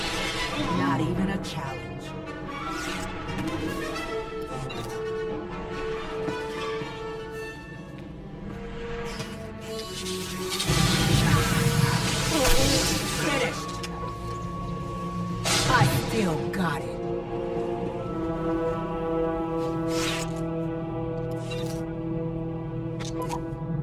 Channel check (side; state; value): both; identical; correlation 1.00